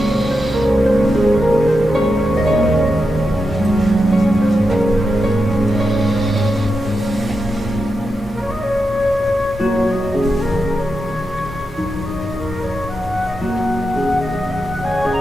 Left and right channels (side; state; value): both; normal; correlation 0.87